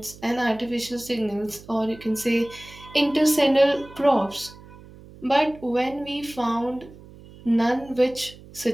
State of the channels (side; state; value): right; noise; hum, 20 dB below the sound